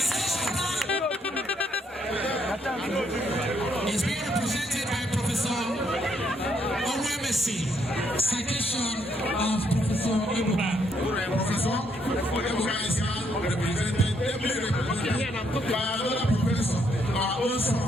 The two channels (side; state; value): both; normal; correlation 0.73